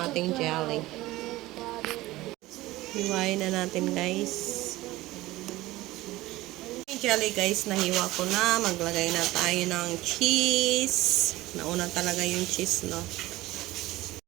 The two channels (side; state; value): left; quieter; 18.0 dB